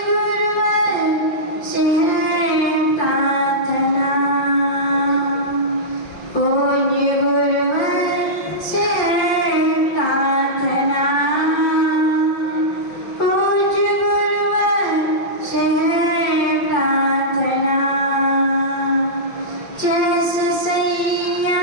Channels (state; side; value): late; right; 5.7 ms